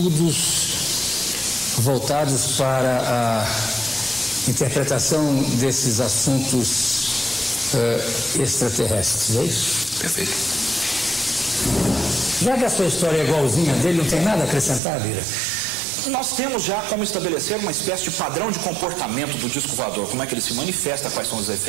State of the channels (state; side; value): drops out; left; at 14.8 s